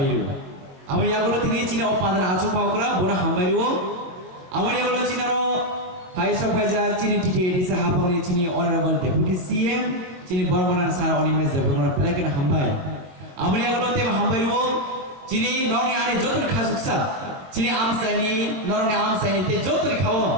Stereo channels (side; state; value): left; late; 22 ms